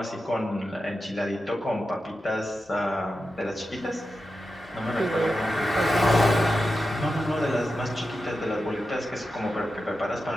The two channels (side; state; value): both; normal; correlation 0.91